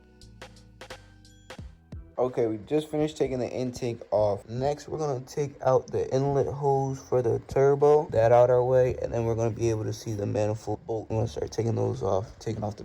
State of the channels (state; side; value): identical; both; correlation 1.00